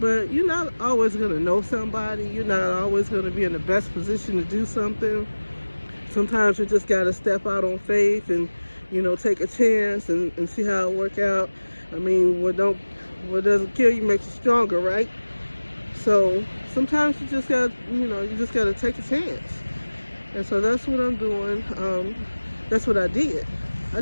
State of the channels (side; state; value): both; inverted; correlation -1.00